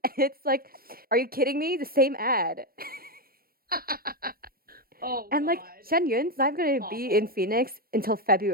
and it's like, are you kidding me? The same ad. Oh And like God, Shen Yun's not going to be in awful. Phoenix until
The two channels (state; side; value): late; left; 0.43 ms